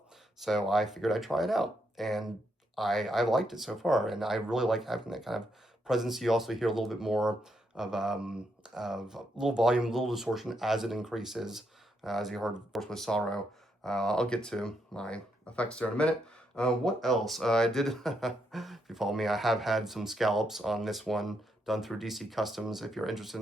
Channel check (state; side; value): normal; both; correlation 0.78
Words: So I figured I'd try it out, and I liked it so far, and I really like having that kind of presence. You also hear a little bit more of a little volume, a little distortion as it increases, as you heard, of course, with sorrow. I'll get to my effects there in a minute. What else? I did, if you follow me, I have had some scallops on this one done through DC Customs. If you're interested